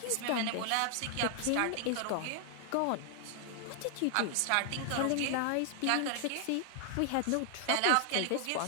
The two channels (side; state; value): both; different; correlation 0.00